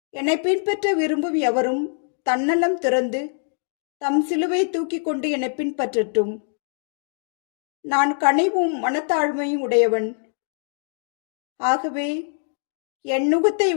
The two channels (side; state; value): right; silent; digital silence